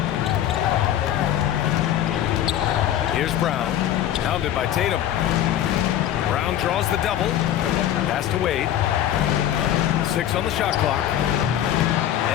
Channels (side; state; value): right; quieter; 11.4 dB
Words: Here's Brown, pounded by Tatum. Brown draws the double. Pass to Wade. 6 on the shot clock.